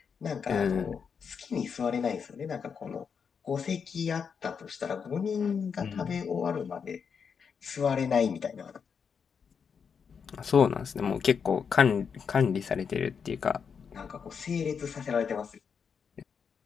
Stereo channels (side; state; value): right; quieter; 6.5 dB